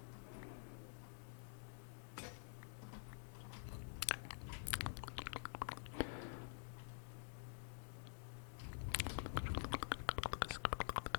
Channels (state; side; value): silent; right; digital silence